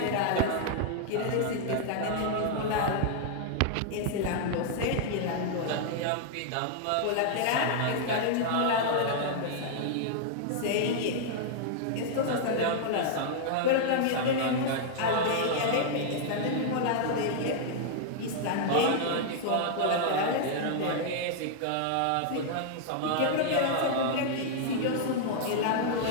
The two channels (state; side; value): different; both; correlation -0.01